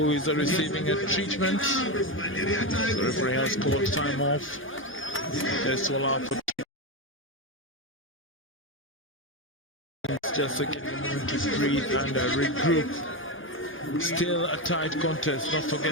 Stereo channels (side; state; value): both; normal; correlation 0.13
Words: is receiving a treatment. The referee has called time off. This will allow for just to get them to breathe and regroup. Still a tight contest, not